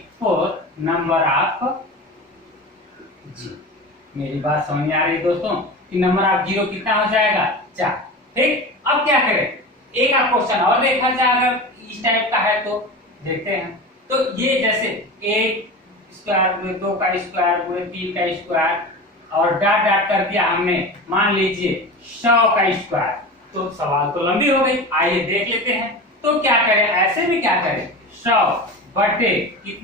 4 नंबर ऑफ जीरो। मेरी बात समझ में आ रही है दोस्तों कि नंबर ऑफ जीरो कितना हो जाएगा, 4। ठीक, अब क्या करें, एक आप क्वेश्चन और देखा जाए अगर इस टाइप का है तो देखते हैं। तो ये जैसे 1 स्क्वायर गुणे 2 का स्क्वायर गुणे 3 का स्क्वायर और डाट डाट कर दिया हमने, मान लीजिए 100 का स्क्वायर, तो सवाल तो लंबी हो गई। आइए देख लेते हैं। तो क्या करें, ऐसे में क्या करें, 100 बटे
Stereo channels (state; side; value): normal; both; correlation 0.30